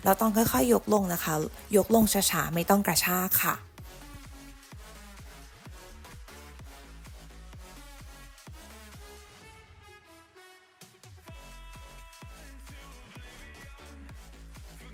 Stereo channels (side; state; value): both; identical; correlation 1.00